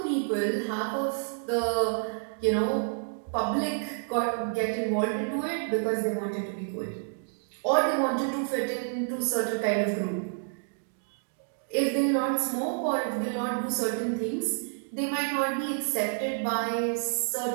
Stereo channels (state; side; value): silent; left; digital silence